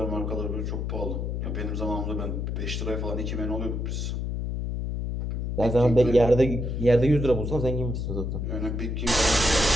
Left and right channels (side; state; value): left; noise; hum, 2 dB below the sound